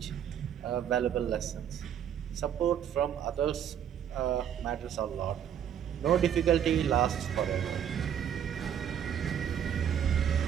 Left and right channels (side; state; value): left; quieter; 9.2 dB